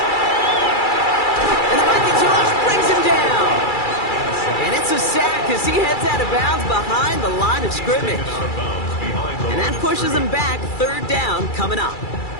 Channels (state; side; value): late; right; 2.3 ms